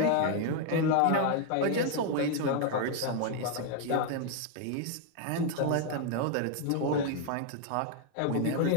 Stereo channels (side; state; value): both; different; correlation 0.00